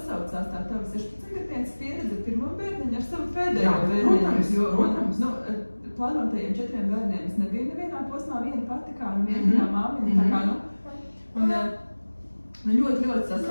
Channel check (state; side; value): inverted; both; correlation -1.00